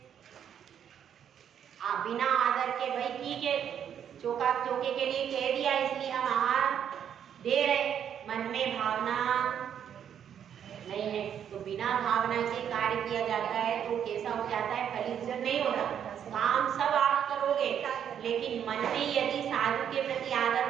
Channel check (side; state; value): left; quieter; 8.9 dB